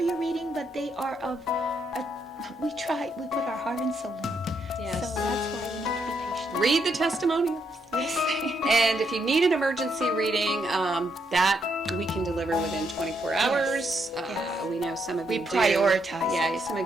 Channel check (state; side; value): normal; both; correlation 0.77